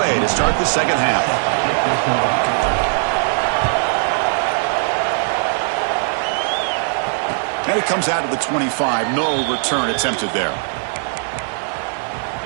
to start the second half. And it comes out to the 25. No return attempted there.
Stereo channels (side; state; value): left; silent; digital silence